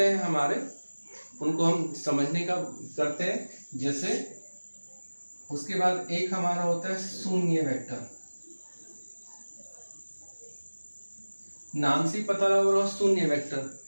हैं हमारे, उनको हम समझने का करते हैं। जैसे उसके बाद एक हमारा होता है शून्य वेक्टर। नाम से पता लग रहा है शून्य वेक्टर,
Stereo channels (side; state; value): both; inverted; correlation -1.00